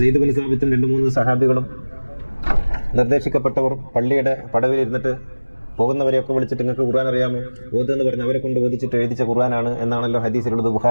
സെയ്ദ് ബിൻ സാബിത്തും 2-3 സഹാബികളും നിർദ്ദേശിക്കപ്പെട്ടവർ പള്ളിയുടെ പടവിലിരുന്നിട്ട് പോകുന്നവരെയൊക്കെ വിളിച്ചിട്ട് നിങ്ങൾക്ക് ഖുർആൻ അറിയാമോ? ഓതെന്ന് പറഞ്ഞ് അവരെ കൊണ്ട് ഓദിച്ചിട്ട് എഴുതിച്ച ഖുർആനാണ് എന്നാണല്ലോ ഹദീസിലുള്ളത്,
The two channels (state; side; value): inverted; both; correlation -1.00